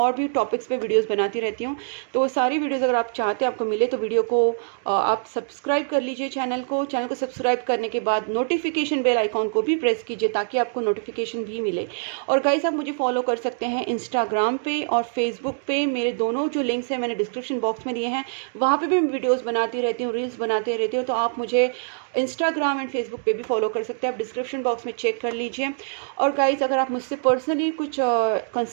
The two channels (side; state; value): left; silent; digital silence